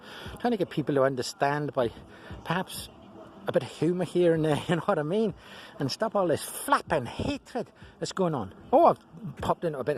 trying to get people to understand by perhaps a bit of humour here and there, you know what I mean, and stop all this flapping hatred that's going on. Oh, I've popped into a bit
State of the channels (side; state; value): both; identical; correlation 1.00